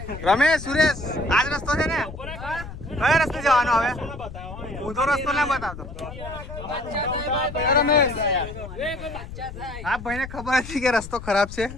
રમેશ, સુરેશ, આજ રસ્તો છે ને? કયો રસ્તે જવાનો હવે? ઊંધો રસ્તો ના બતાવતો. આ ભાઈને ખબર હતી કે રસ્તો ખરાબ છે,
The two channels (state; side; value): noise; left; rumble, 12 dB below the sound